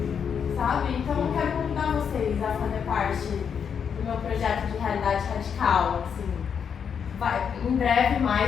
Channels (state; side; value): quieter; right; 7.2 dB